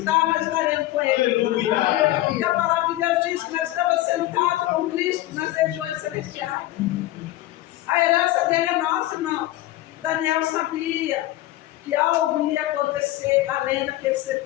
nós estaremos com Ele. Aleluia. E a palavra de Deus diz que nós estamos sentados com Cristo nas regiões celestiais. A herança dele é nossa, irmãos. Daniel sabia que algo ia acontecer além daqueles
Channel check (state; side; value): quieter; right; 16.0 dB